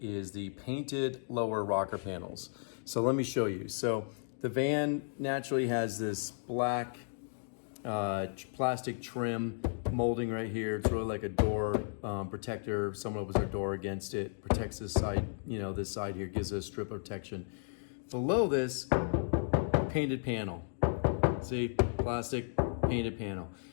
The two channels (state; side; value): silent; right; digital silence